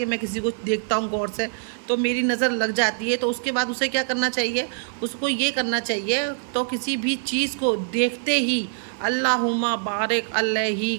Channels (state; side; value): silent; left; digital silence